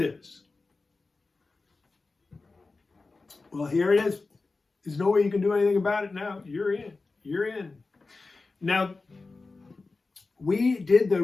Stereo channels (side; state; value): right; quieter; 3.8 dB